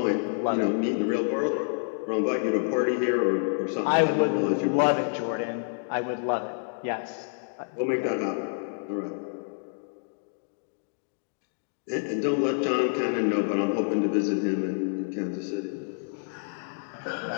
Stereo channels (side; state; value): right; silent; digital silence